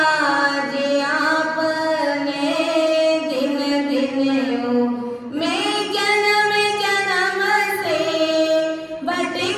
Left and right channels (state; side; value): identical; both; correlation 1.00